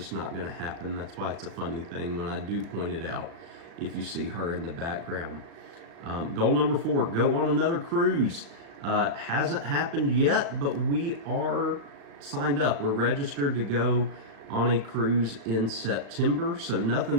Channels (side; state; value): left; late; 36 ms